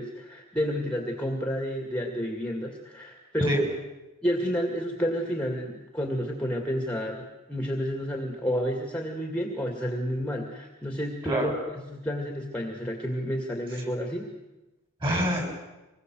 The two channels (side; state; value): both; normal; correlation 0.72